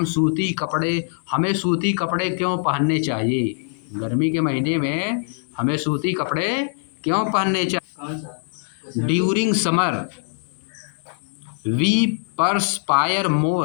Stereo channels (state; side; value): silent; right; digital silence